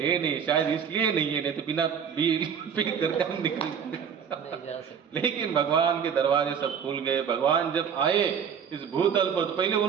शायद इसलिए नहीं है, नहीं तो बिना बिल पे करके हम निकल। लेकिन भगवान के दरवाजे सब खुल गए। भगवान जब आए इस भूतल पर तो पहले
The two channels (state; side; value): quieter; left; 7.4 dB